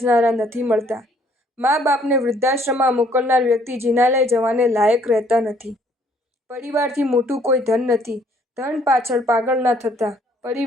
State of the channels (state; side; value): normal; both; correlation 0.63